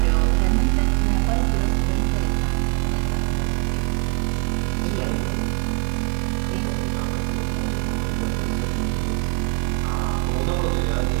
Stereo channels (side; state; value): left; quieter; 39.3 dB